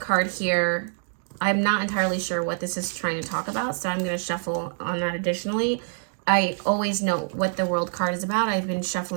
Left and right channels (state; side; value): silent; left; digital silence